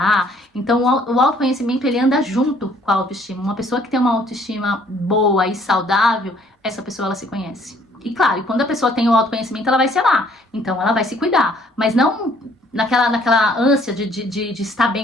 Então o autoconhecimento, ele anda junto com a autoestima. Uma pessoa que tem uma autoestima boa e saudável, essa pessoa, ela se conhece. E claro, quando a pessoa tem o autoconhecimento, ela vai se amar. Então ela vai se cuidar. Mas não naquela ânsia de estar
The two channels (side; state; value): both; normal; correlation 0.61